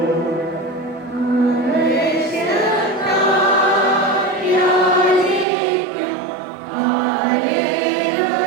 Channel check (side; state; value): left; drops out; at 5.5 s